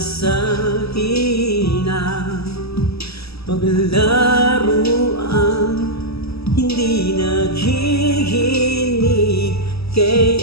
hina? Paglaruan hindi naghihinig,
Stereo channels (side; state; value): right; late; 0.77 ms